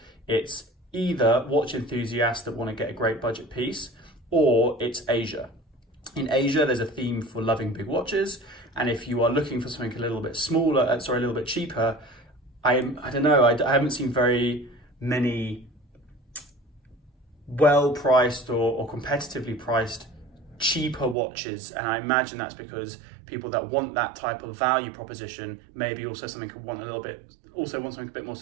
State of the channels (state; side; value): drops out; left; at 21.2 s